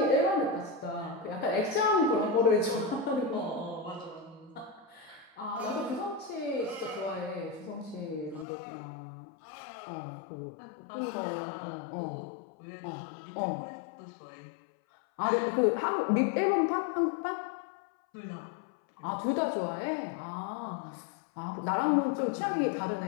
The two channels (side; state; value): right; drops out; at 8.5 s